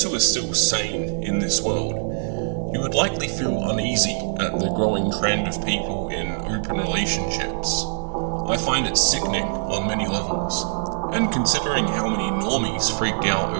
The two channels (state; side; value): silent; left; digital silence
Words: who are still sane in this world, you would likely feel uneasy at the growing trend of people in open relationships. I find it sickening on many levels, and considering how many normies freaked out